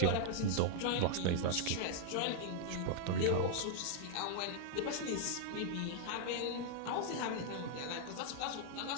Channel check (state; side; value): different; both; correlation -0.01